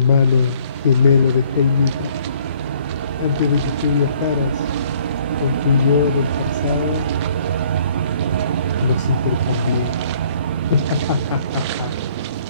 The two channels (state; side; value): inverted; both; correlation -0.60